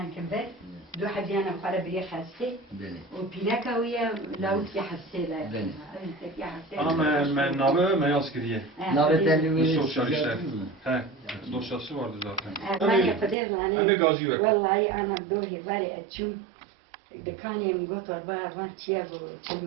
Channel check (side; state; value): left; drops out; at 13.4 s